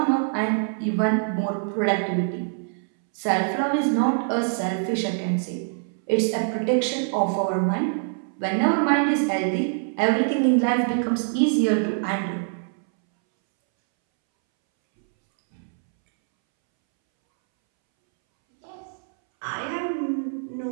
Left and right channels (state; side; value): silent; left; 62 dB below the other